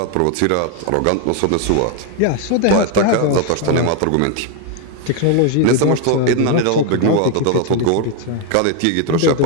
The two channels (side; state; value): both; different; correlation 0.01